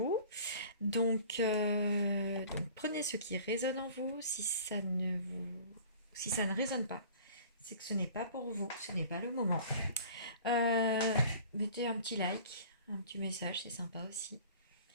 Donc prenez ce qui résonne en vous. Si ça ne résonne pas, c'est que ce n'est pas pour vous, ce n'est pas le moment. Mettez un petit like, un petit message, c'est sympa aussi.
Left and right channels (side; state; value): both; inverted; correlation -0.45